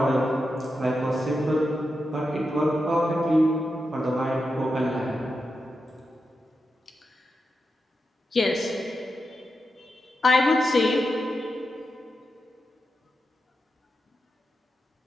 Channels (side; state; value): both; normal; correlation 0.88